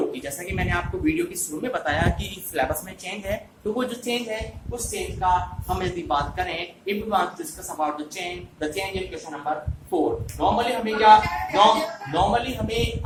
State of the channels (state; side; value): identical; both; correlation 1.00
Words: की। जैसा कि मैंने आपको वीडियो की शुरू में बताया कि सिलेबस में चेंज है, तो वो जो चेंज है उस चेंज का हम यदि बात करें, if we want to discuss about the change in question number 4, normally हमें